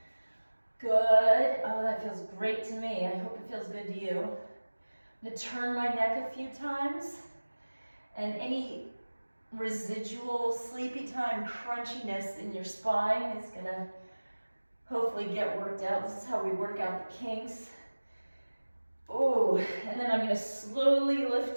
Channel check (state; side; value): inverted; both; correlation -1.00